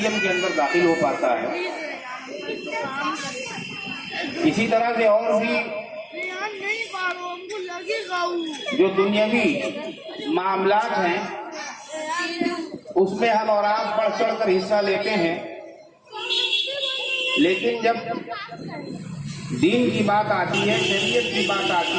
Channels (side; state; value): both; identical; correlation 1.00